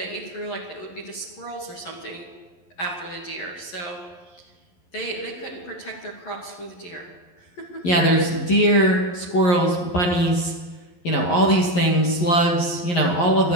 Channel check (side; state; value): right; late; 11 ms